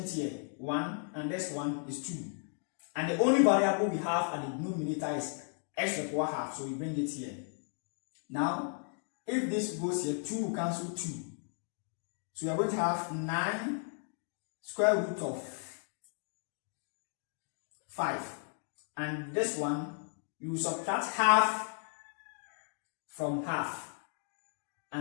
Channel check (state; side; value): silent; right; 54 dB below the other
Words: here, 1, and this one is 2. And the only variable we have at the denominator is x to the power half, so we bring it here. Now, if this goes here, 2 will cancel 2. So we are going to have 9 square root of 5. And this one, you subtract half from half.